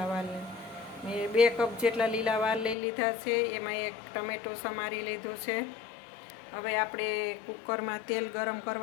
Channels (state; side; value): drops out; right; at 2.8 s